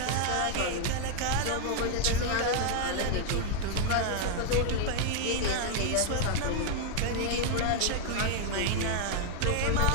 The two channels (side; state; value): both; different; correlation 0.00